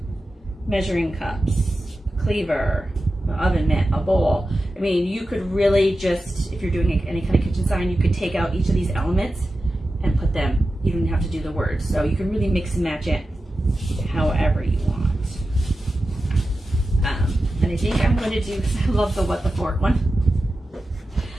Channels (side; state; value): both; normal; correlation 0.93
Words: measuring cups, cleaver, an oven mitt, a bowl. I mean, you could really just, if you're doing any kind of kitchen sign, you could take out each of these elements and put them, you don't have to do the words. So you can really mix and match it however you want. And I think I'm going to do, because I love the What the Fork one,